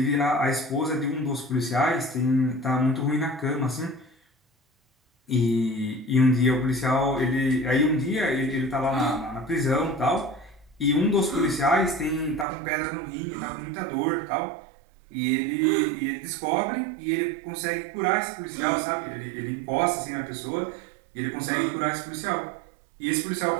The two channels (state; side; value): drops out; left; at 12.5 s